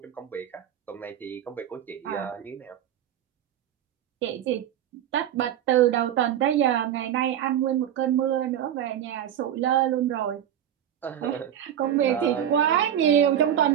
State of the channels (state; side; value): quieter; left; 10.4 dB